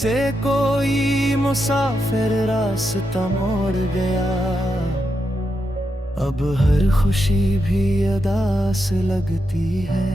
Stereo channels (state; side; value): normal; both; correlation 0.85